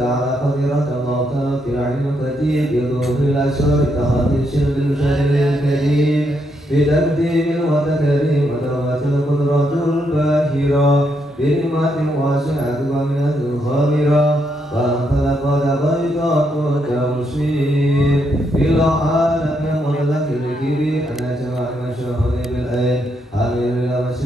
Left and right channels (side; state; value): both; normal; correlation 0.78